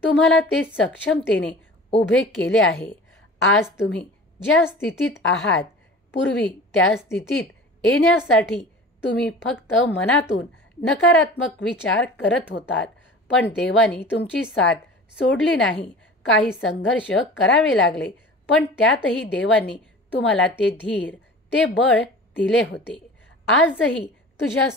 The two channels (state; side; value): normal; both; correlation 0.40